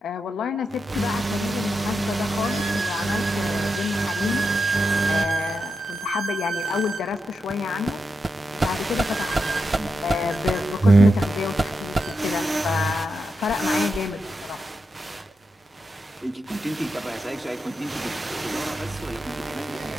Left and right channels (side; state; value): both; normal; correlation 0.87